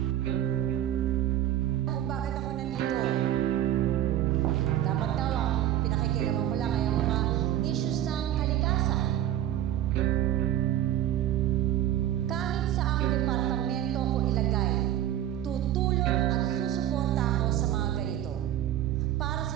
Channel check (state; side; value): quieter; left; 12.2 dB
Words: Kung bakit ako nandito? Dapat daw ang pinakikilaman ko lang ay ang mga issues ng kalikasan. Kahit saang departamento ko ilagay, tutulong at susuporta ako sa mga ganito. Para